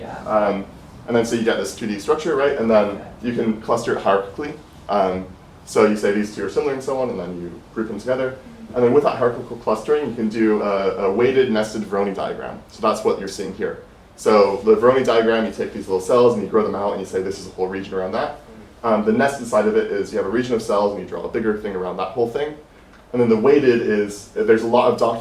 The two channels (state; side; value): identical; both; correlation 1.00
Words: And then so you get this 2D structure, right? And then you can cluster it hierarchically. So you say these two are similar and so on, and then you group them together. And then with that hierarchical clustering, you can do a weighted nested Voronoi diagram. So that's what you're seeing here. So the Voronoi diagram, you take these little cells and you grow them out and you say this is a whole region around that. The nested side of it is you have a region of cells and you draw a bigger thing around that whole thing. And then the weighted is, there's a lot of